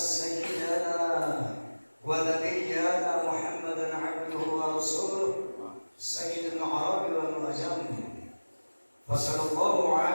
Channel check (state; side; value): inverted; both; correlation -1.00